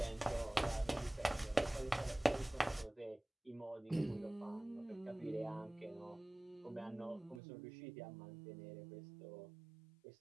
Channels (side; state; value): left; drops out; at 7.4 s